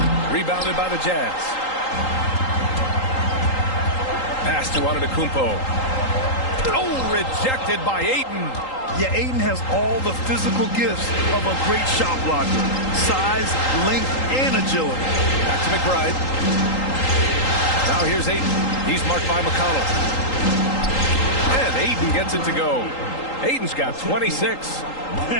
Rebounded by the Jazz. Pass to Antetokounmpo. Oh, rejected by Ayton. Yeah, Ayton has all the physical gifts of a great shot blocker. Size, length, and agility. Back to McBride. Now here's Ayton. He's marked by McConnell. And Ayton gets it to go. Ayton's got 26.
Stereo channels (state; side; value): late; right; 3.8 ms